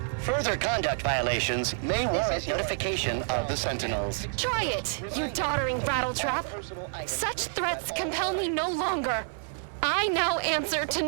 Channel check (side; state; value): left; silent; 59 dB below the other